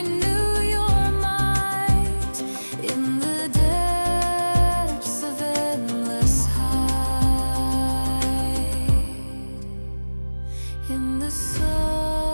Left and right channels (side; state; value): both; inverted; correlation -1.00